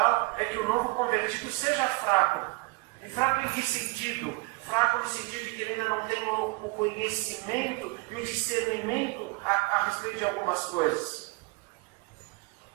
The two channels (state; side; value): quieter; left; 26.2 dB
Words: é que o novo convertido seja fraco. E fraco em que sentido? Fraco no sentido de que ele ainda não tem o conhecimento e o discernimento a respeito de algumas coisas.